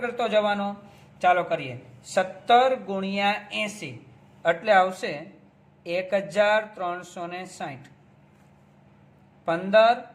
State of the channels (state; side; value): identical; both; correlation 1.00